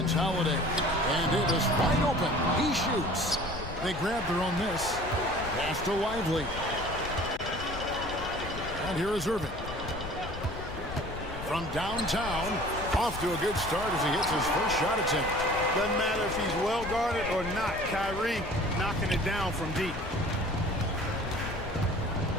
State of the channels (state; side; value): noise; left; rumble, 11 dB below the sound